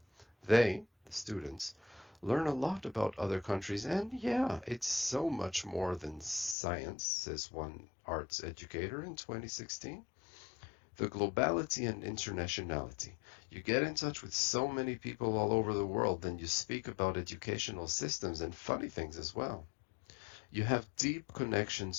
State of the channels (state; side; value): drops out; right; at 6.6 s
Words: They, the students, learn a lot about other countries, and yeah, it's so much more than science, says one arts educator in 2016. The globality and internationality. You get in touch with so many people all over the world, then you speak about educational systems and funny things as well. You have deep